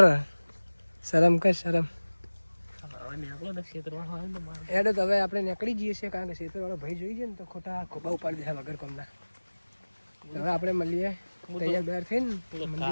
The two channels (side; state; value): both; inverted; correlation -1.00